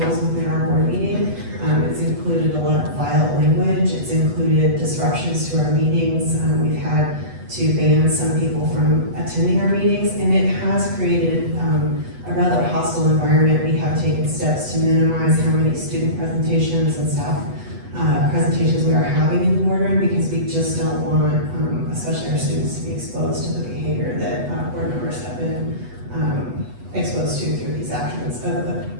within our board meeting. It's included a lot of violent language. It's included disruptions to our meetings. We've had to ban some people from attending our meetings, and it has created a rather hostile environment. We have taken steps to minimize how many student presentations and staff presentations we are having in the boardroom, because we just don't want, especially our students, to be exposed to the behavior that board members have been exposed to through these actions of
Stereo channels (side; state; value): left; late; 8.1 ms